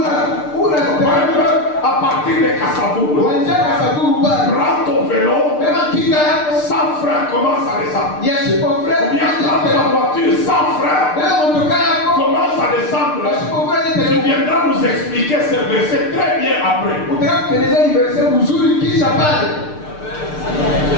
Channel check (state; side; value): late; right; 6.7 ms